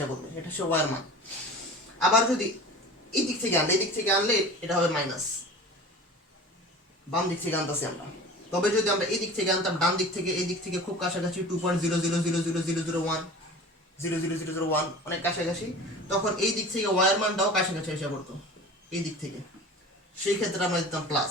পড়বে, এটা হচ্ছে y এর মান। আবার যদি এই দিক থেকে আনলে এটা হবে মাইনাস, বাম দিক থেকে আনতেছি আমরা। তবে যদি আমরা এই দিক থেকে আনতাম, ডান দিক থেকে এই দিক থেকে খুব কাছাকাছি 2.000000001 00001 অনেক কাছাকাছি, তখন এই দিক থেকে y এর মানটাও কাছাকাছি এসে পড়তো এই দিক থেকে, সেই ক্ষেত্রে আমরা দিতাম প্লাস।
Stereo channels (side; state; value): both; normal; correlation 0.38